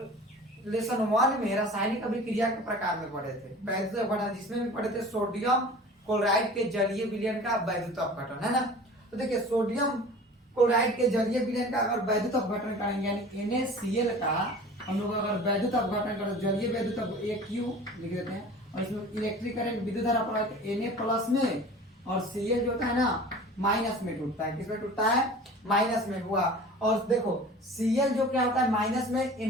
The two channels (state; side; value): normal; both; correlation 0.41